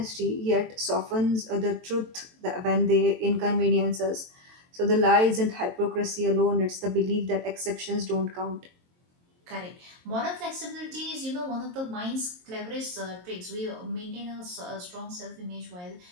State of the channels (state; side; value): late; left; 23 ms